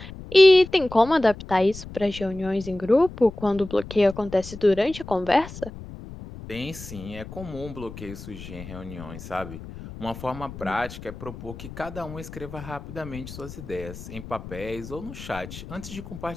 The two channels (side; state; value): left; noise; rumble, 13 dB below the sound